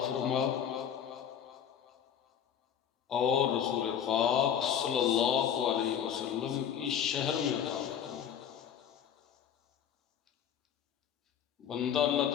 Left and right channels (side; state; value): right; quieter; 8.7 dB